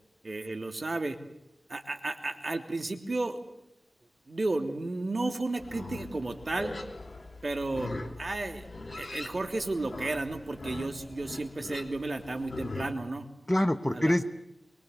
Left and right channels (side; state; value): both; normal; correlation 0.97